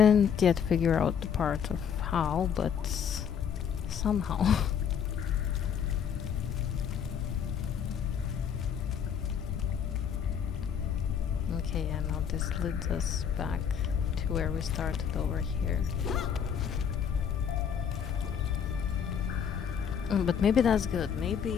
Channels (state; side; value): quieter; right; 7.8 dB